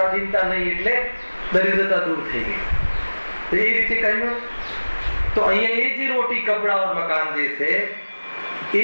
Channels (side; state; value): both; inverted; correlation -1.00